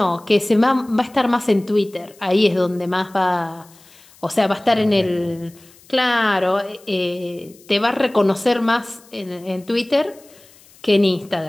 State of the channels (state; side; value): noise; left; hiss, 26 dB below the sound